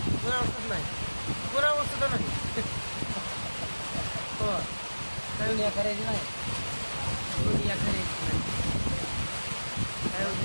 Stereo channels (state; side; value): inverted; both; correlation -1.00